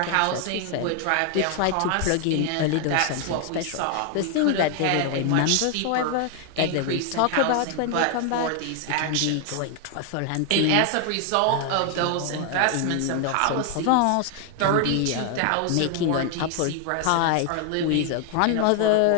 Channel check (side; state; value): both; different; correlation 0.00